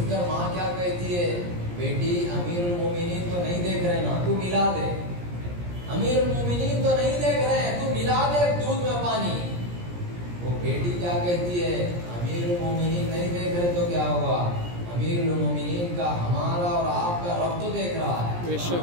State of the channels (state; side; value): late; left; 17 ms